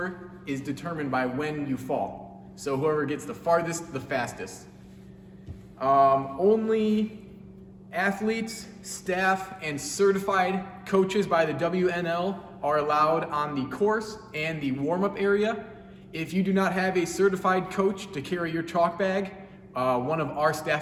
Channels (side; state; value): both; identical; correlation 1.00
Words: is determined by when you fall. So whoever gets the farthest, the fastest. Only athletes, staff, and certified coaches by the WNL are allowed on the course and the warm-up area. If you do not have a certified coach to carry your chalk bag, one of our